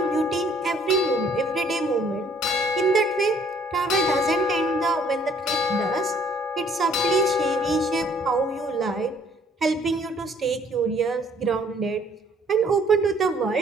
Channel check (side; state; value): both; normal; correlation 0.60